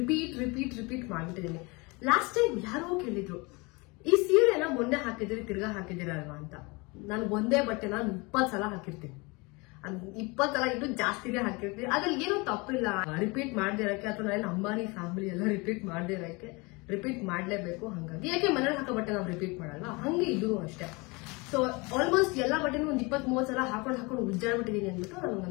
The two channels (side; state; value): right; quieter; 26.8 dB